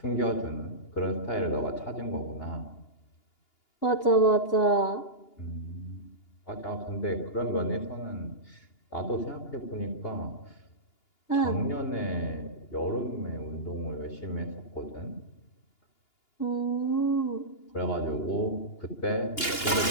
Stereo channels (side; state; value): right; late; 2.8 ms